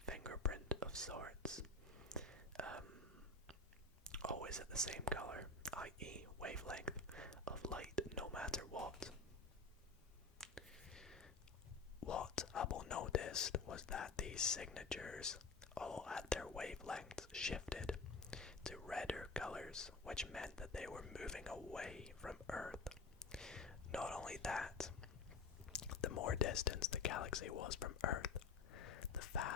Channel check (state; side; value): quieter; right; 3.9 dB